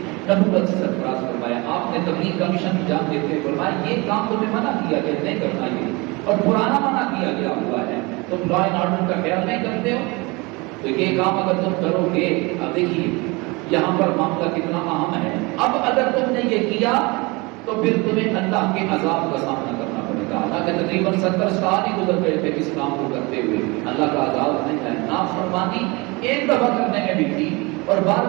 نبوت سے سرفراز فرمایا۔ آپ نے تبلیغ کا مشن انجام دیتے ہوئے فرمایا یہ کام تمہیں منع کیا کہ نہیں کرنا، یہ اور پرانا منع کیا گیا ہوا ہے، تم لا اینڈ آرڈر کا خیال نہیں کرتے ہو، تو یہ کام اگر تم کرو گے، اب دیکھیے یہاں پر معاملہ کتنا اہم ہے، اب اگر تم نے یہ کیا تو پھر تمہیں اللہ کے عذاب کا سامنا کرنا پڑے گا۔ اللہ کے تقریباً 70 سال ہی گزر گئے تھے اس کام کو کرتے ہوئے، اللہ کا عذاب نہیں ہے۔ نافرمانی ایک دفعہ کرنے میں بھی تھی اور بار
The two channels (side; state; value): left; quieter; 25.9 dB